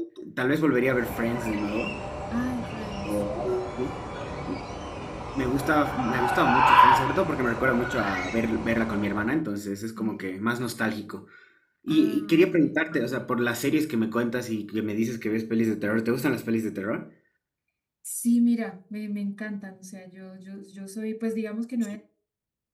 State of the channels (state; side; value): identical; both; correlation 1.00